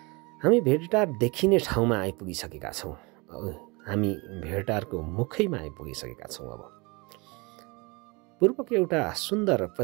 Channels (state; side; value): quieter; left; 27.3 dB